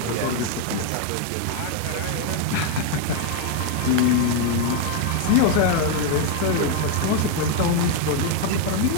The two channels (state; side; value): different; both; correlation 0.01